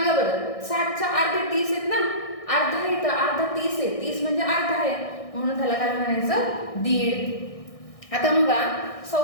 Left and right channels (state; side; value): late; right; 1.6 ms